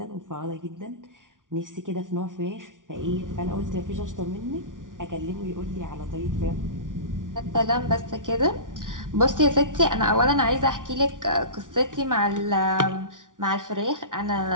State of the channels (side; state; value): left; late; 0.88 ms